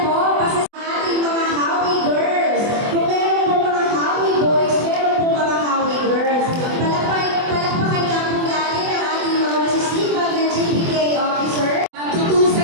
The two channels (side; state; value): left; late; 24 ms